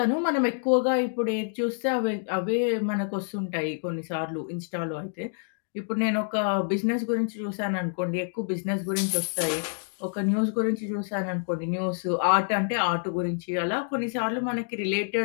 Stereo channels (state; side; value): silent; right; digital silence